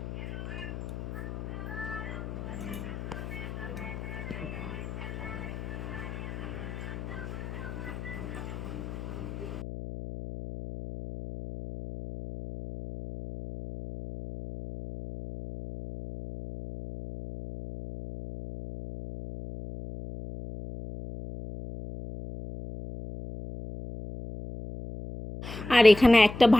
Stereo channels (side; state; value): left; noise; hum, 8 dB below the sound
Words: আর এখানে একটা